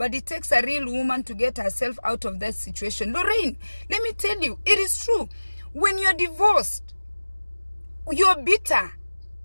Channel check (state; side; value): inverted; both; correlation -1.00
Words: it takes a real woman to get herself out of that situation. Lorraine, let me tell you, it is true. When you're divorced, you're bitter.